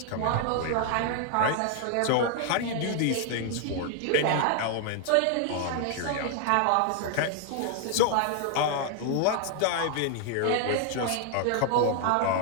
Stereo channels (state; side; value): different; both; correlation 0.00